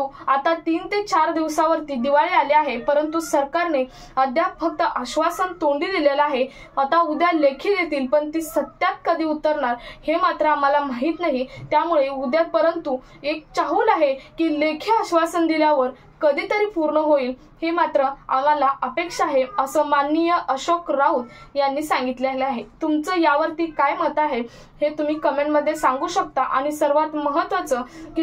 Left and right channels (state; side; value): identical; both; correlation 1.00